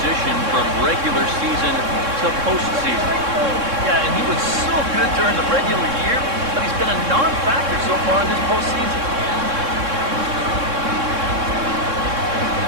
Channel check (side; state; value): left; late; 3.6 ms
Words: from regular season to postseason. Yeah, and he was so good during the regular year, but he's been a non-factor so far in this postseason.